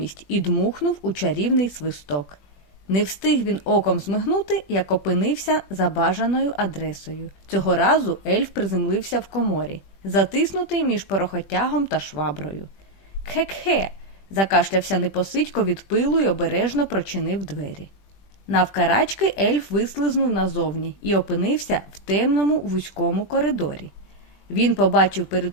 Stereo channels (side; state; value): right; late; 20 ms